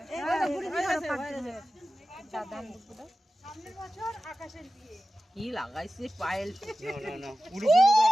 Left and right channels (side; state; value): both; normal; correlation 0.95